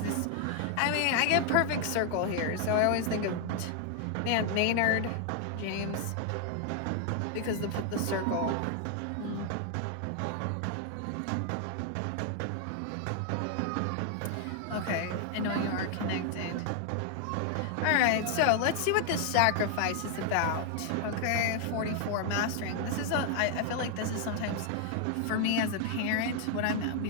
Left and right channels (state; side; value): different; both; correlation 0.00